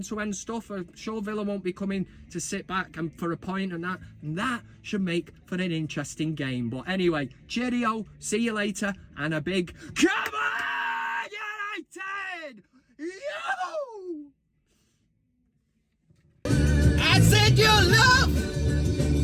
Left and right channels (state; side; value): identical; both; correlation 1.00